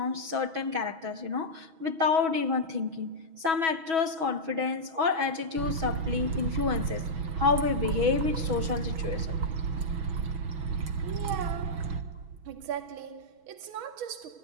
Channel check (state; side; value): late; left; 6.2 ms